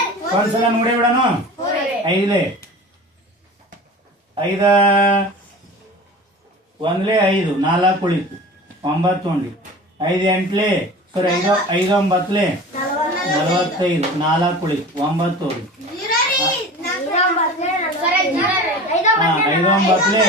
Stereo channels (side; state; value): both; normal; correlation 0.37